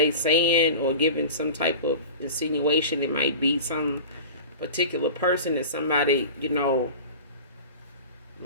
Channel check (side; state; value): both; inverted; correlation -0.34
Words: saying or giving some type of insinuation it might be some particular person, that somebody,